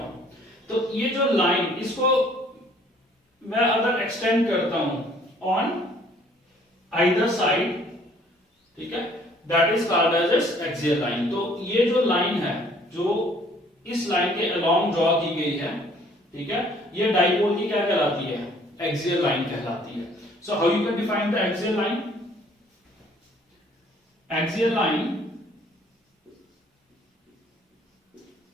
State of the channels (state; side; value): normal; both; correlation 0.59